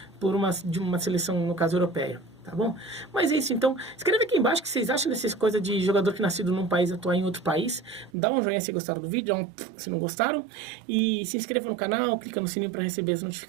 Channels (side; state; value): left; drops out; at 8.1 s